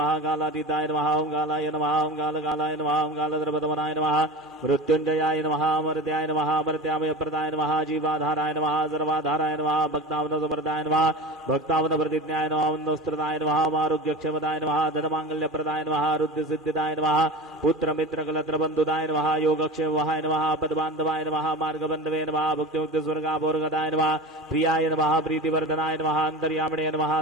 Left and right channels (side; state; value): both; normal; correlation 0.31